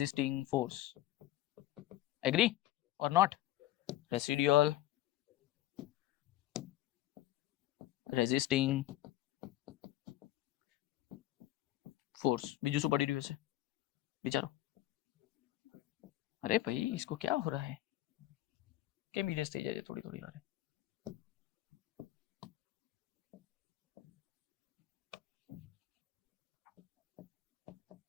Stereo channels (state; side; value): quieter; right; 15.4 dB